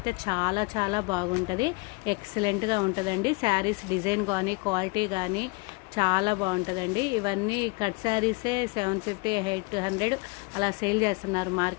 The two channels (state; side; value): quieter; right; 27.6 dB